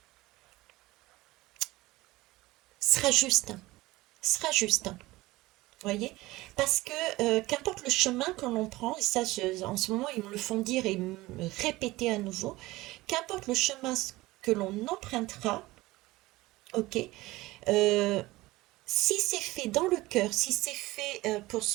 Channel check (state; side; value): quieter; left; 19.4 dB